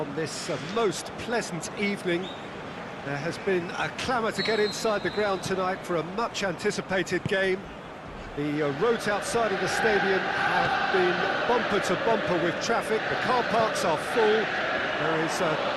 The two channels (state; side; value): identical; both; correlation 1.00